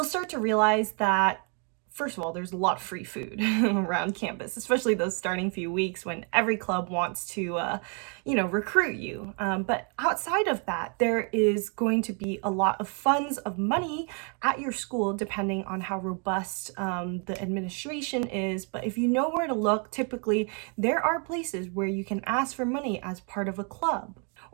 start to realize that, first of all, there's a lot of free food around campus, especially those starting few weeks when every club wants to, recruit you. But outside of that, there is going to be a lot of funds of money at your school, depending on how robust the administration is. But if you know where to look, typically there are places where you can ask for money as part of a club,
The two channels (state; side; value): quieter; left; 38.0 dB